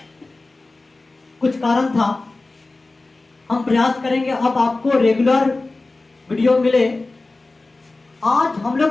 कुछ कारण था। हम प्रयास करेंगे अब आपको रेगुलर वीडियो मिले। आज हम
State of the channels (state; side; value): quieter; right; 3.3 dB